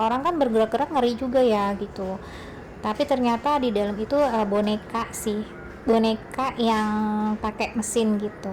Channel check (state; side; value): identical; both; correlation 1.00